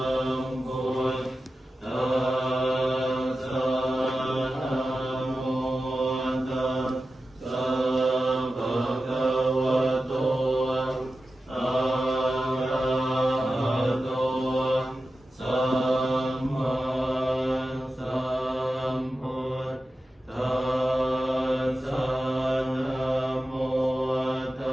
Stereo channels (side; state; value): both; normal; correlation 0.93